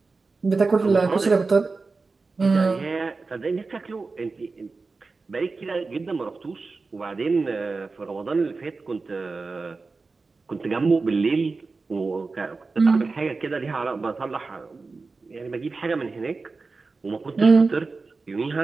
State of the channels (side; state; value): left; quieter; 4.0 dB